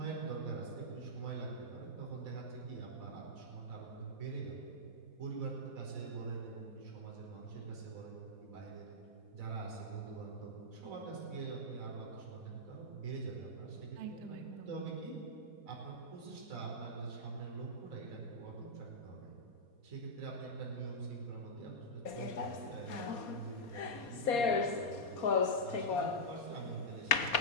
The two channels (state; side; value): late; right; 4.2 ms